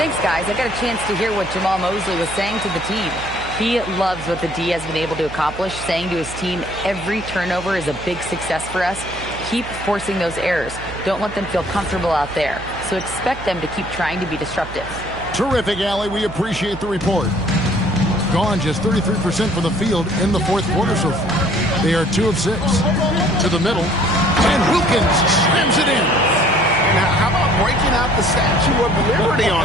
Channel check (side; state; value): right; noise; hum, 13 dB below the sound